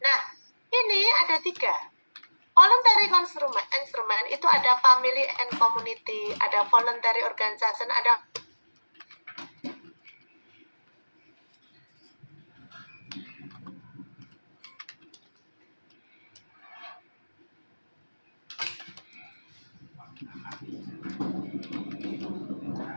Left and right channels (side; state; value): both; inverted; correlation -1.00